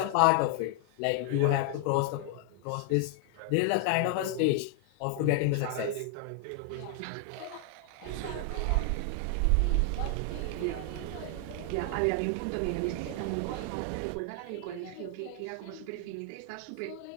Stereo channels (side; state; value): both; different; correlation 0.00